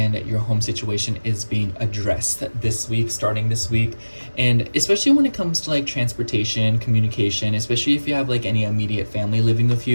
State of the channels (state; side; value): inverted; both; correlation -1.00